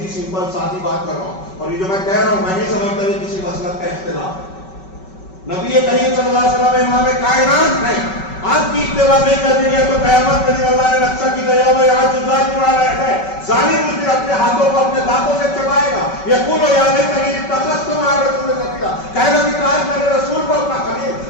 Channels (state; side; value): late; right; 5.3 ms